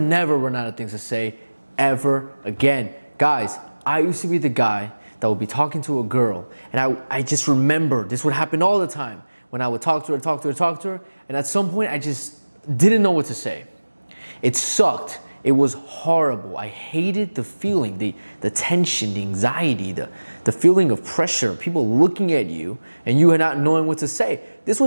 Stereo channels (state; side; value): inverted; both; correlation -1.00